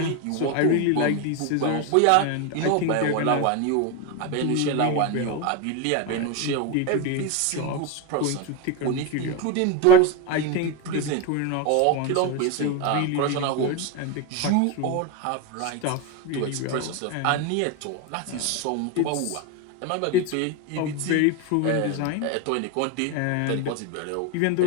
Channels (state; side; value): different; both; correlation 0.03